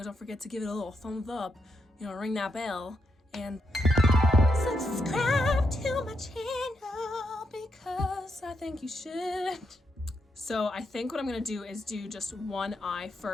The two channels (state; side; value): normal; both; correlation 0.81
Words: don't forget to give it a little thumbs up, ring that bell, and subscribe to my channel because I think you should. So I think what I'm gonna do is do just one eye